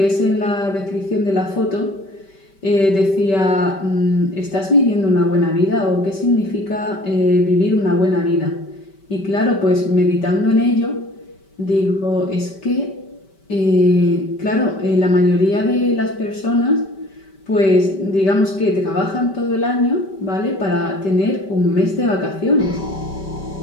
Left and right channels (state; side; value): late; right; 5.2 ms